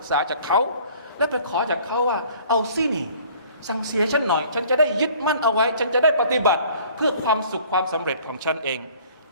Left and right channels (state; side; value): inverted; both; correlation -0.53